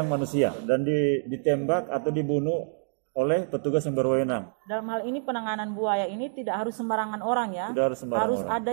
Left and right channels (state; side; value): silent; left; digital silence